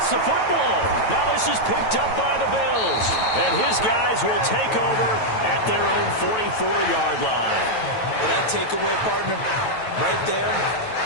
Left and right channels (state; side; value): late; right; 9.1 ms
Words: the football. Now this is picked up by the Bills. And his guys will take over at their own 44-yard line. Well, that takeaway, partner, right there,